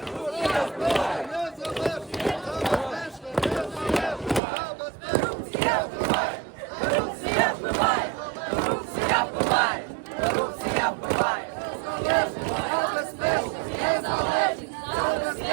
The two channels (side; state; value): left; drops out; at 4.4 s